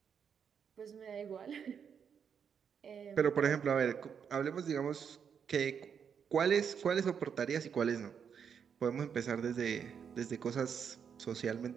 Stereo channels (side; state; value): left; quieter; 7.2 dB